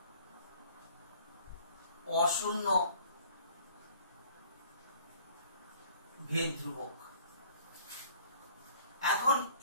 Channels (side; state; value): both; inverted; correlation -0.54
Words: অশূন্য ভেদ ধ্রুবক। এখন